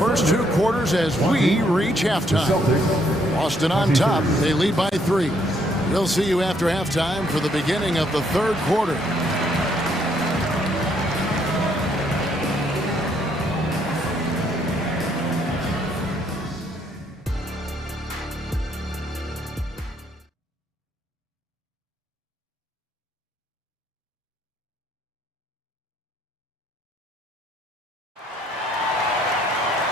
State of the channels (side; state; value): both; normal; correlation 0.70